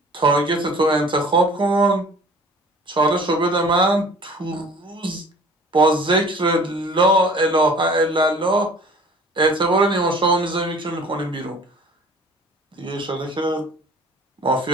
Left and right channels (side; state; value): both; normal; correlation 0.48